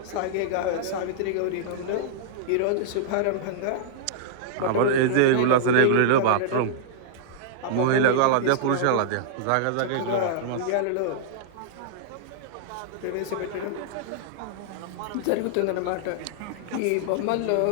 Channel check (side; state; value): both; different; correlation -0.02